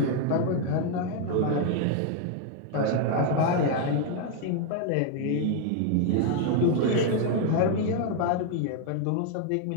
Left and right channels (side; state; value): both; different; correlation 0.00